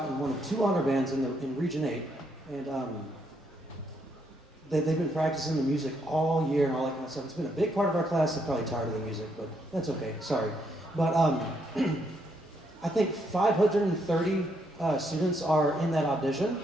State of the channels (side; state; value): both; normal; correlation 0.75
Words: in one of 2 honor bands in Region 8. And they've been practicing the music all year and all that kind of stuff. It's been a big part of our class. They're probably tired of the music, but that's okay. Sorry. But I think 530 students are in that audition.